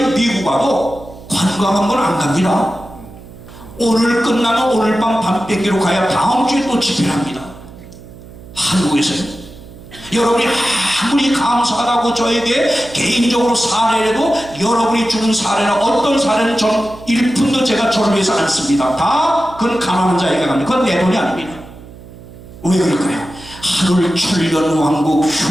미국 와도 관광 한 번 안 갑니다. 오늘 끝나면 오늘 밤 뺏기로 가야 다음 주에 또 집회를 합니다. 한국에서요. 여러분이 아무리 감사하다고 저에게 개인적으로 사례라도 여러분이 주는 사례나 어떤 사례는 전 1푼도 제가 저를 위해서 안 씁니다. 다 그건 가난한 자에게 갑니다. 그건 내 돈이 아닙니다. 왜 그럴까요? 하늘 천년 왕국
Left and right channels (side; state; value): right; noise; hum, 18 dB below the sound